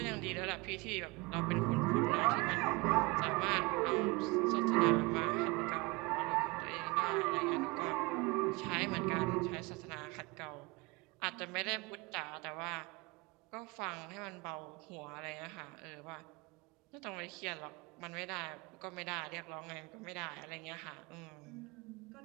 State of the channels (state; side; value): quieter; left; 25.2 dB